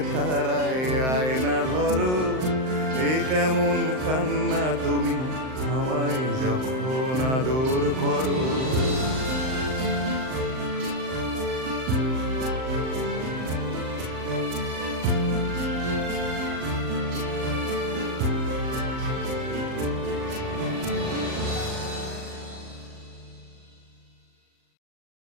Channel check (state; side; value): late; left; 39 ms